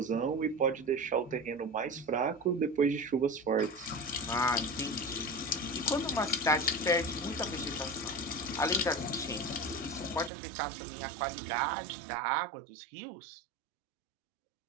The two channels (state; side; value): drops out; left; at 10.3 s